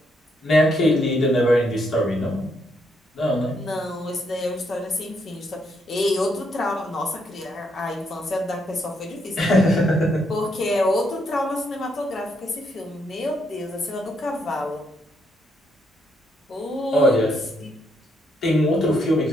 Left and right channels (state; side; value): normal; both; correlation 0.76